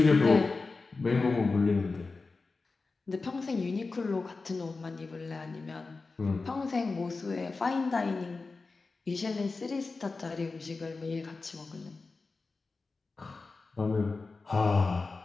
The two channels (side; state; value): right; quieter; 3.9 dB